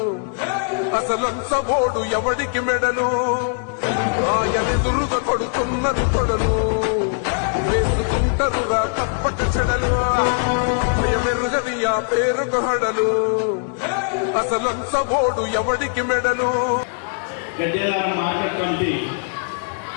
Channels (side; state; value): right; silent; digital silence